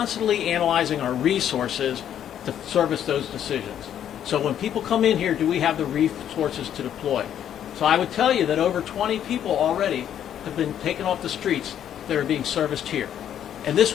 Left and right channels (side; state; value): right; quieter; 10.0 dB